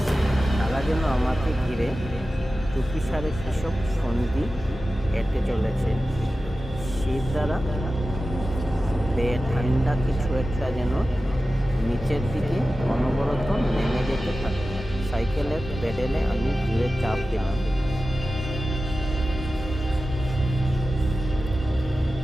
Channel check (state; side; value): normal; both; correlation 0.94